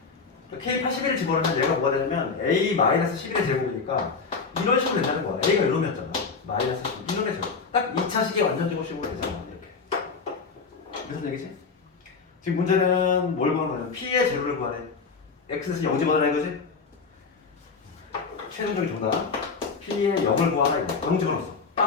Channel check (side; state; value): right; quieter; 4.9 dB